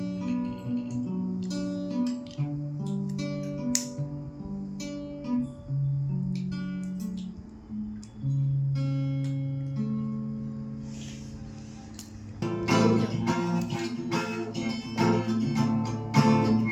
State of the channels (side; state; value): both; identical; correlation 1.00